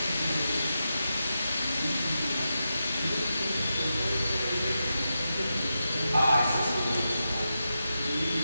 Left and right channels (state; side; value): inverted; both; correlation -0.89